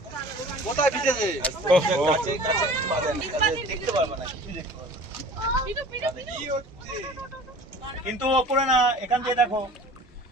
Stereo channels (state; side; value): normal; both; correlation 0.44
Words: কোথায় ভিজেছে? দেখতে পারবে না, কিছু দেখতে পারবে না। কিন্তু ওপরে না, এখান থেকে দেখো।